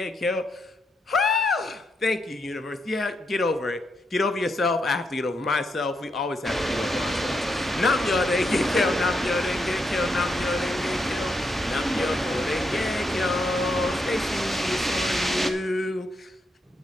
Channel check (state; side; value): normal; both; correlation 0.81